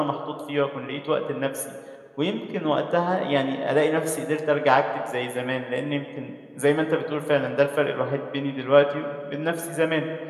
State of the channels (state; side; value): identical; both; correlation 1.00